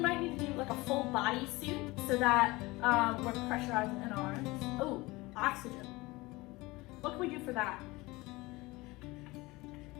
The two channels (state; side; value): quieter; right; 21.8 dB